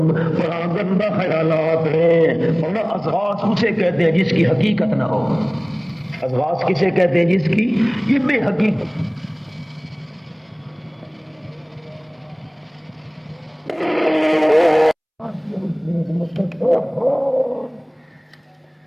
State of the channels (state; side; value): identical; both; correlation 1.00